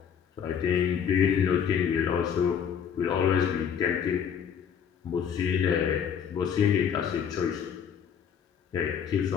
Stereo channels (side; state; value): right; quieter; 7.8 dB